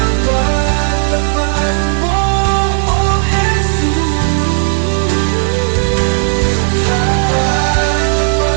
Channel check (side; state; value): left; silent; digital silence